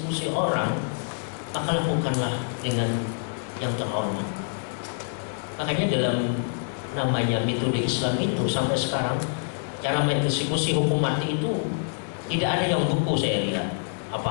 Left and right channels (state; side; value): silent; right; digital silence